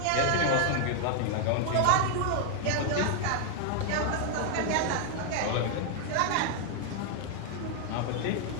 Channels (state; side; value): different; both; correlation 0.00